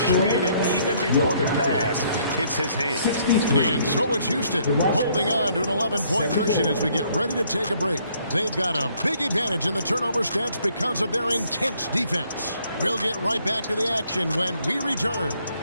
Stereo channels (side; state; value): both; inverted; correlation -0.66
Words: it even before the pass hits his hand. And so it's Houston holding on to an 11-point cushion as we get ready to take a break. They've got a big advantage in the turnover stats because of their intense defense. We'll get right back to the action when we return.